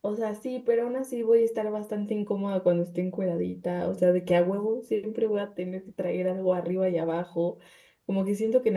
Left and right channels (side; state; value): both; identical; correlation 1.00